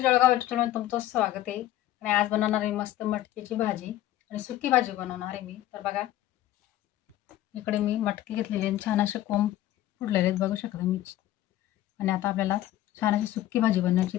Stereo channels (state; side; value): quieter; right; 13.9 dB